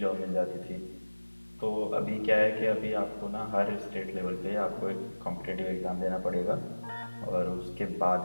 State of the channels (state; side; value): inverted; both; correlation -1.00